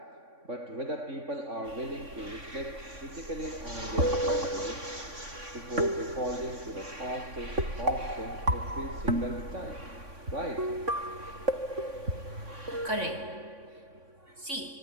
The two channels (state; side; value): late; left; 3.6 ms